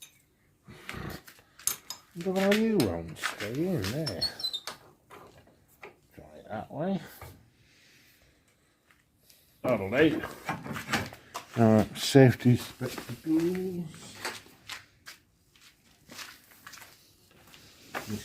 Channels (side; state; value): both; identical; correlation 1.00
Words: Look how you won't stay in there. Try it that way. That'll do. Alright, safety spectacles. You